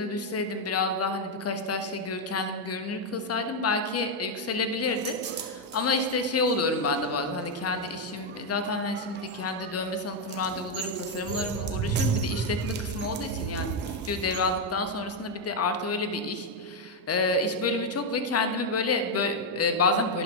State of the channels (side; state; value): both; normal; correlation 0.02